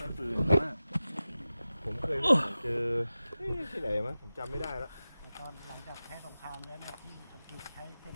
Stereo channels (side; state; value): both; inverted; correlation -0.95